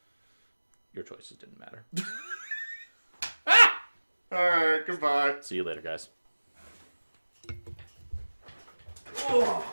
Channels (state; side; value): inverted; both; correlation -1.00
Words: your choices didn't matter. Alright, goodbye. See you later, guys.